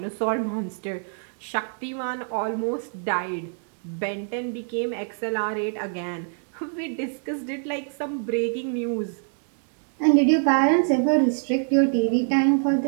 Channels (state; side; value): silent; left; 62 dB below the other